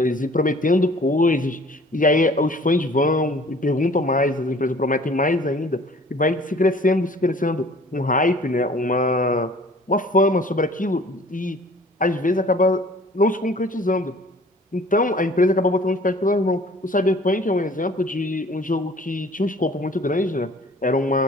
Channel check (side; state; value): both; normal; correlation 0.51